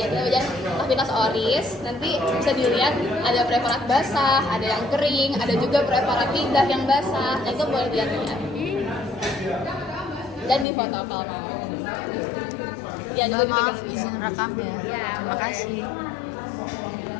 kita belajar aktivitas oris. Nanti bisa dilihat ada preparat basah, ada yang kering, ada juga preparat lidah yang basah. Nah itu boleh dilihat-lihat. Dan di foto kalau mau. Ya, Maaf izin rekam ya. Terima kasih.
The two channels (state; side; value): drops out; right; at 10.7 s